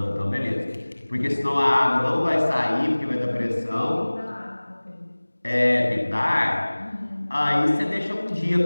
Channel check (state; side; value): inverted; both; correlation -1.00